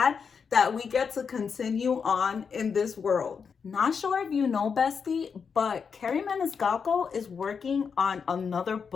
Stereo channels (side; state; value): right; quieter; 6.1 dB